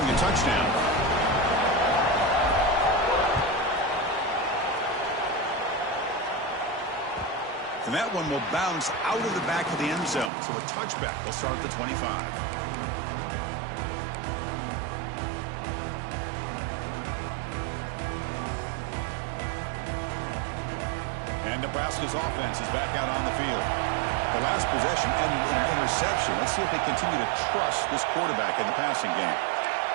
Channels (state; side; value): drops out; left; at 10.3 s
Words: a touchdown. And that one will bounce out of the back of the end zone, so a touchback. They'll start at the 25. And Nebraska's offense is back out on the field. The last possession ended in an interception. Let's see if they continue to trust this quarterback in the passing game.